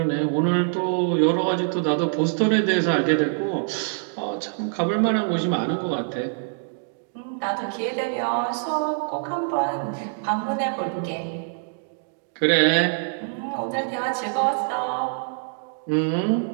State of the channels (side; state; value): left; silent; digital silence